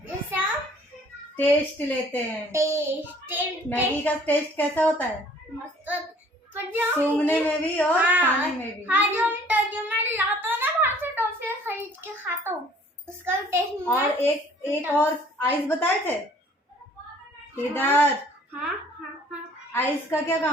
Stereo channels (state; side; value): normal; both; correlation 0.55